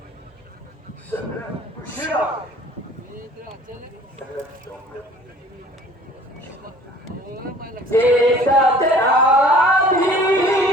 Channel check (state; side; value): normal; both; correlation 0.50